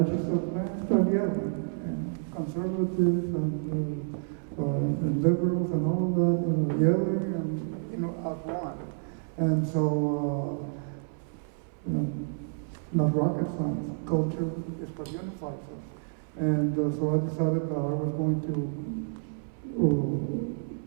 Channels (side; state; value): left; silent; 58 dB below the other